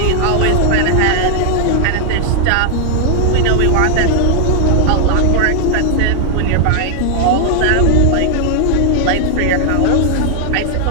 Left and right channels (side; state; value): both; different; correlation 0.00